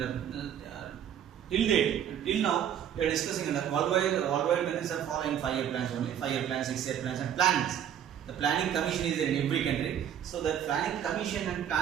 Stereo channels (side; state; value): left; quieter; 9.6 dB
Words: Till now, we are discussing that worldwide countries are following 5-year plans only. 5-year plans, 6-year plans and plannings. The Planning Commission is in every country. So the Planning Commission and